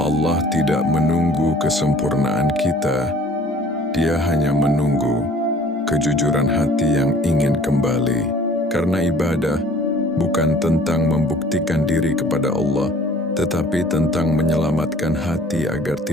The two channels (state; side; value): normal; both; correlation 0.52